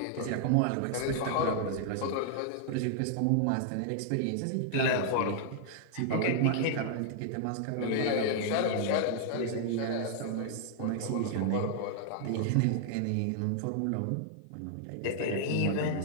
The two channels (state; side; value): different; both; correlation -0.01